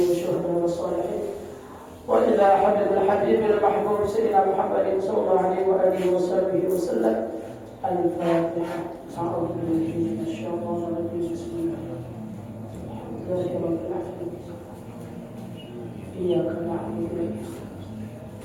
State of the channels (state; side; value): identical; both; correlation 1.00